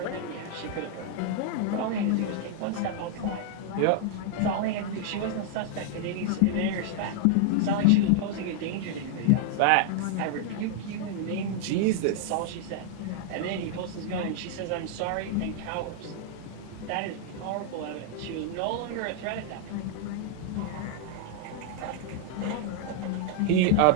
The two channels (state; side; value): different; both; correlation 0.00